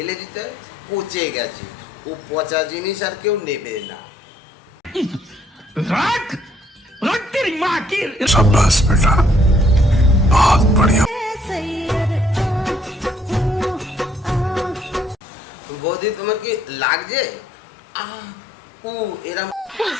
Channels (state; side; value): normal; both; correlation 0.66